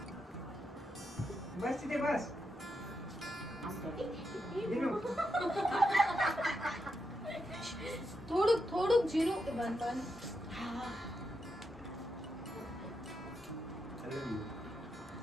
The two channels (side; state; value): both; normal; correlation 0.84